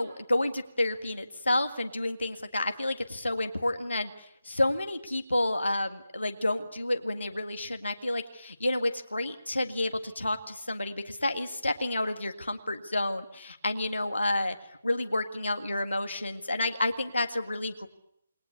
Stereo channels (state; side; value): inverted; both; correlation -0.91